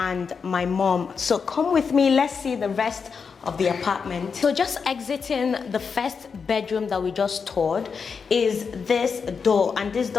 my mom. So come with me, let's see the rest of the apartment. So just exiting the first bedroom that we just toured is this door, and this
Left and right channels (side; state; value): right; quieter; 5.7 dB